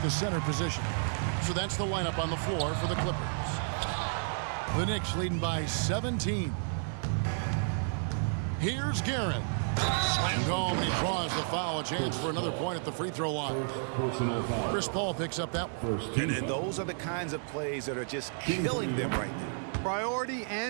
the center position. So that's the lineup on the floor for the Clippers. The Knicks leading by 17. Here's Guerin. Slammed home, and he draws the foul. A chance for another point at the free throw line. Chris Paul picks up that one. And those are the kinds of plays that are just killing them right now. Priority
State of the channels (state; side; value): silent; left; digital silence